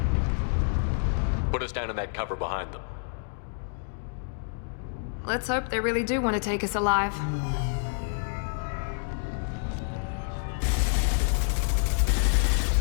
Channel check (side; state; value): right; silent; digital silence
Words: Put us down in that cover behind them. Let's hope they really do want to take us alive.